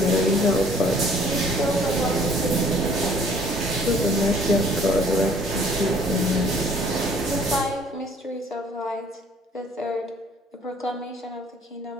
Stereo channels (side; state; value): both; normal; correlation 0.57